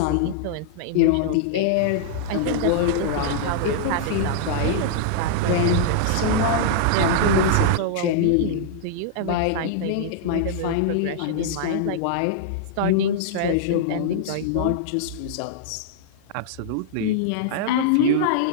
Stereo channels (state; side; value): different; both; correlation -0.01